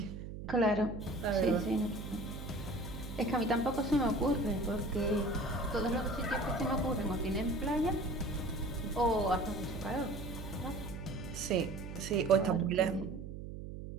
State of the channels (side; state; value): right; noise; hum, 9 dB below the sound